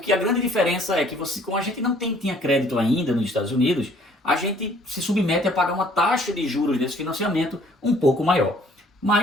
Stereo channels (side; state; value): both; normal; correlation 0.59